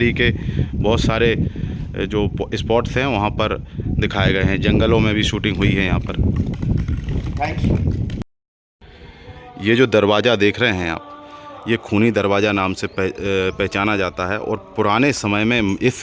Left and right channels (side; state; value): both; identical; correlation 1.00